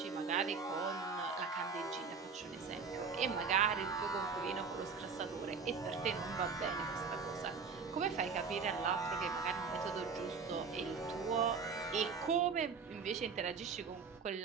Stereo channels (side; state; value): left; quieter; 5.4 dB